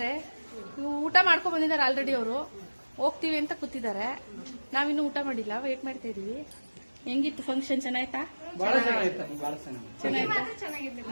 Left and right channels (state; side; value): inverted; both; correlation -1.00